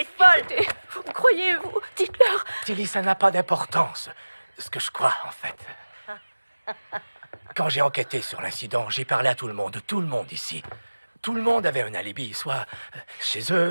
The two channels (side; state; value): both; inverted; correlation -1.00